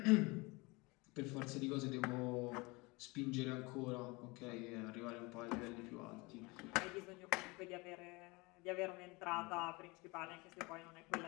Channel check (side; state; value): right; quieter; 25.4 dB